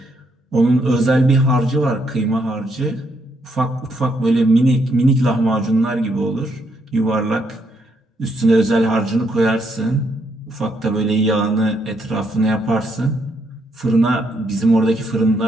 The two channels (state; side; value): normal; both; correlation 0.75